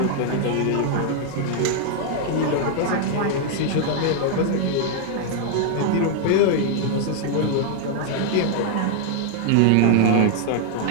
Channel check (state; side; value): different; both; correlation 0.00